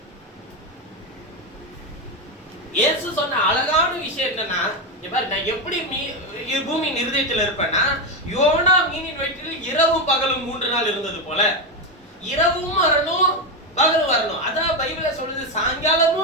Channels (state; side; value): normal; both; correlation 0.10